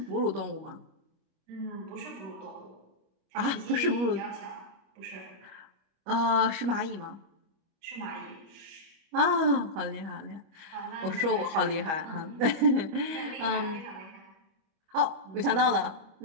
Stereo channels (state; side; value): late; left; 25 ms